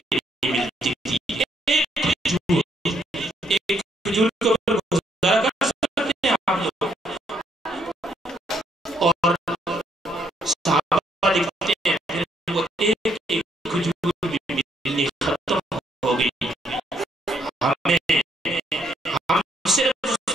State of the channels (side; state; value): both; normal; correlation 0.72